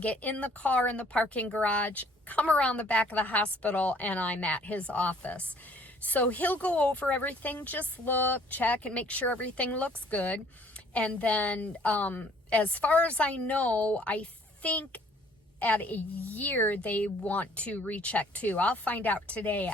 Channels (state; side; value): normal; both; correlation 0.58